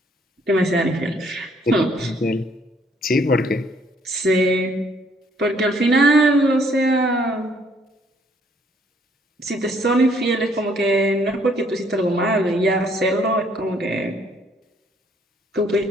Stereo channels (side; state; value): both; normal; correlation 0.65